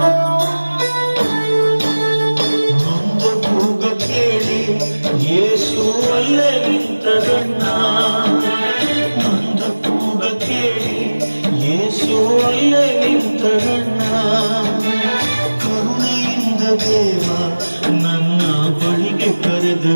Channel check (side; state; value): both; inverted; correlation -1.00